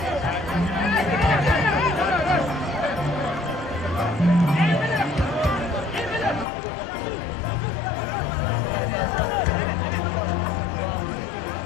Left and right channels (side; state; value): right; drops out; at 6.5 s